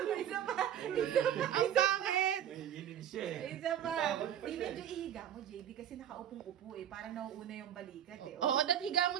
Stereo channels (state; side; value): quieter; left; 10.0 dB